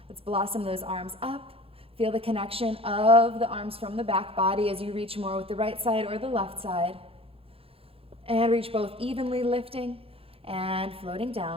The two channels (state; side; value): late; left; 0.27 ms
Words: Let's blossom those arms up. Feel the connection of the arms from the back body as you reach more with the right side or the left side. And reach both evenly, lifting and floating